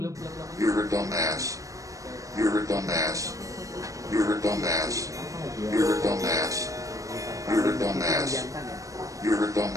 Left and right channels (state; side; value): late; left; 0.16 ms